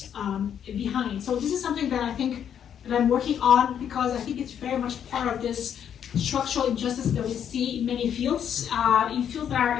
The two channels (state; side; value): quieter; right; 8.9 dB